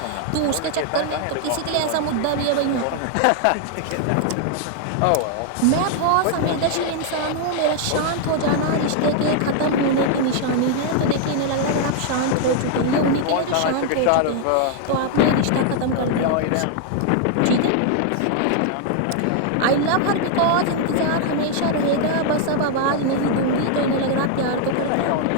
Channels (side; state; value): both; different; correlation 0.00